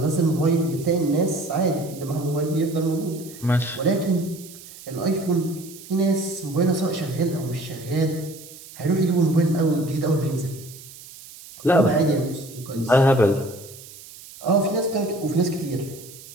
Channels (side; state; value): right; noise; hiss, 18 dB below the sound